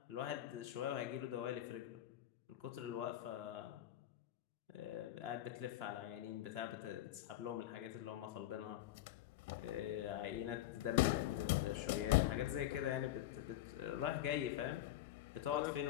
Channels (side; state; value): right; quieter; 13.6 dB